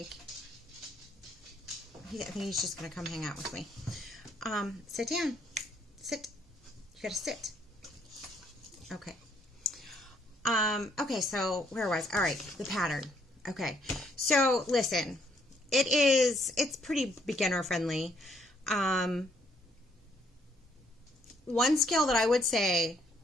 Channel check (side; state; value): both; normal; correlation 0.69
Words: I think he's just going to come hang out with me. Sit down. Sit. You got to sit. Okay. Okay, so where was, all right, the pattern. Okay. So listen, it's pretty beginner friendly. One skill that I would say